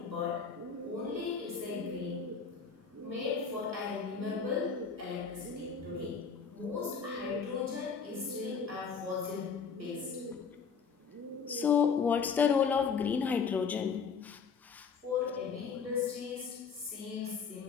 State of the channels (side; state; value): right; quieter; 5.9 dB